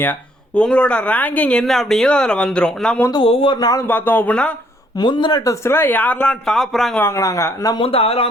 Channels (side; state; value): both; normal; correlation 0.66